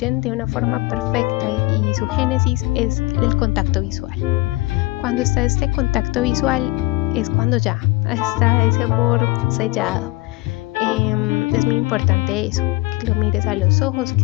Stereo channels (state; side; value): quieter; right; 20.7 dB